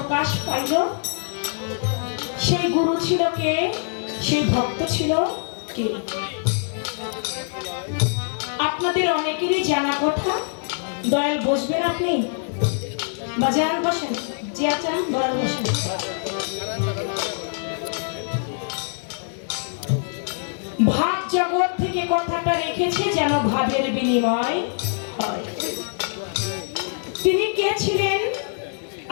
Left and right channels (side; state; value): right; silent; digital silence